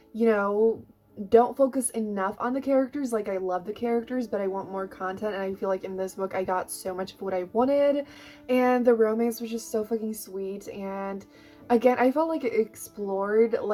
you know, don't focus enough on the characters. Like, I love the characters, but I want more content, and I feel like in this book I got so much of what I wanted, and the romance was just so fucking sweet. And again, I felt like it explored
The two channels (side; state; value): both; identical; correlation 1.00